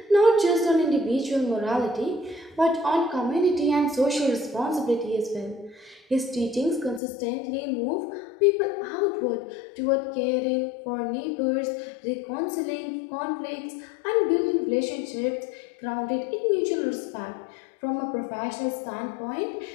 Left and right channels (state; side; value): drops out; right; at 7.0 s